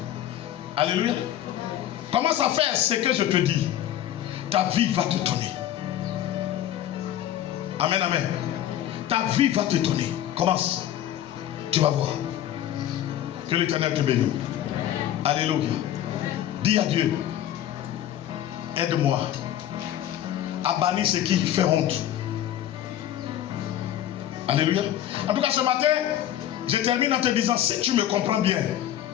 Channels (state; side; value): quieter; right; 11.8 dB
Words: Alléluia. Commence à faire ce que je te dis. Ta vie va t'étonner. Amen, amen. Ta vie va t'étonner. Commence. Tu vas voir. Que l'Éternel te bénisse. Alléluia. Dis à Dieu, aide-moi à bannir ce qui fait honte. Alléluia. En tout cas, ce matin, je termine en te disant, si tu me comprends bien,